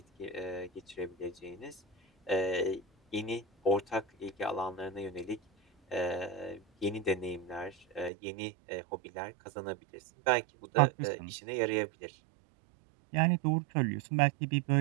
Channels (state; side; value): drops out; left; at 8.1 s